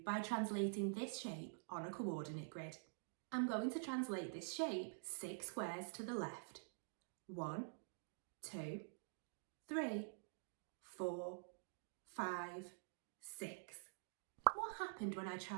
by translating this shape on a coordinate grid. I'm going to translate this shape 6 squares to the left. 1, 2, 3, 4, 5, 6. What happened when I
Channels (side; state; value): left; silent; digital silence